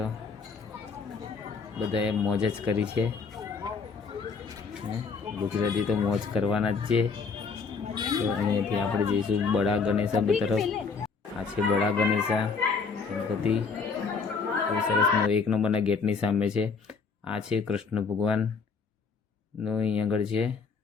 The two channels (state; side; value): quieter; right; 5.1 dB